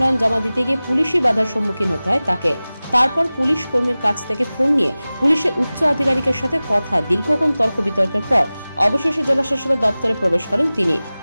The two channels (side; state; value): both; inverted; correlation -0.98